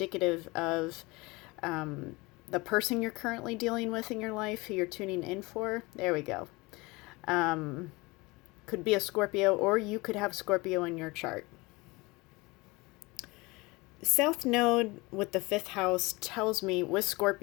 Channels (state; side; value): quieter; right; 23.9 dB